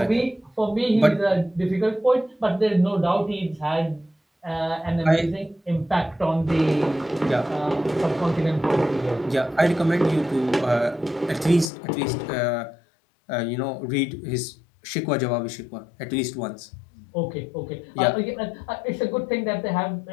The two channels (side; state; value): right; drops out; at 11.7 s